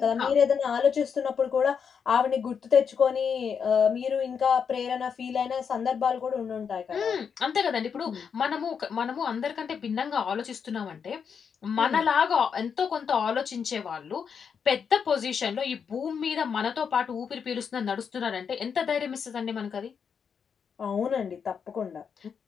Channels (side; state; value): right; quieter; 6.7 dB